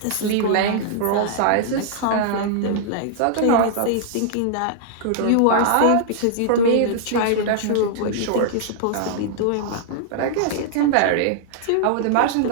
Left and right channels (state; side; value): different; both; correlation -0.01